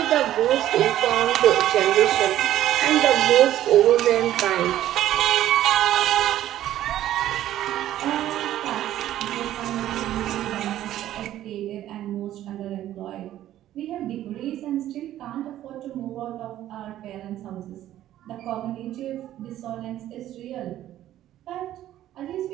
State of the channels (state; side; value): quieter; left; 12.9 dB